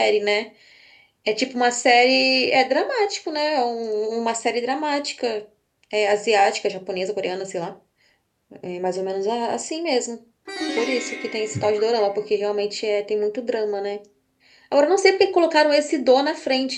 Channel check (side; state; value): both; identical; correlation 1.00